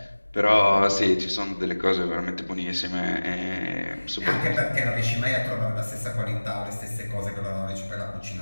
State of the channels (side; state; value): both; inverted; correlation -1.00